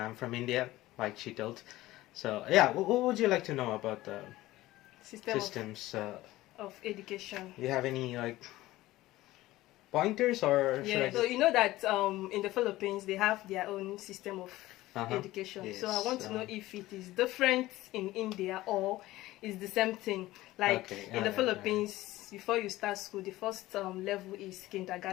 from India, like she told. So, yeah, what would you like to know about the systems of education? You have any, like, pointers or yeah, so you know that in the Philippines, they have their own system of education. Yes. So I want to know if it is different in India or it's the same thing. Like in the Philippines, before you start school, the first level is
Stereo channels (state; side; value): quieter; right; 17.1 dB